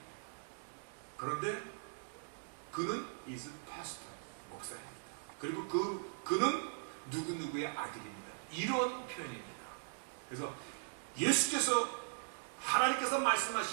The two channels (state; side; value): silent; left; digital silence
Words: 그런데 그는 is pastor, 목사입니다. 그리고 그는 누구누구의 아들입니다. 이런 표현입니다. 그래서 예수께서 하나님께서